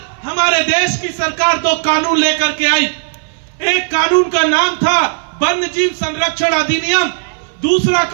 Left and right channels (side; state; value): left; silent; 59 dB below the other